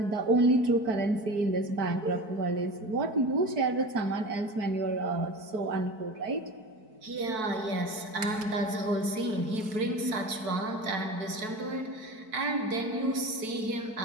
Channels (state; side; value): late; left; 4.6 ms